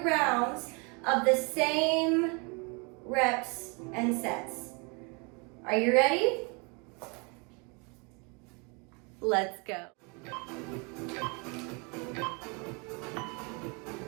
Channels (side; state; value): left; quieter; 32.0 dB